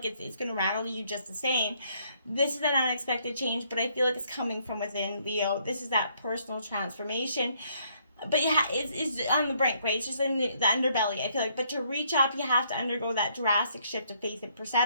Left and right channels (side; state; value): both; inverted; correlation -0.69